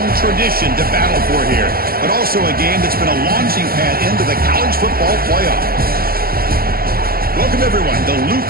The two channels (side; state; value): left; late; 0.43 ms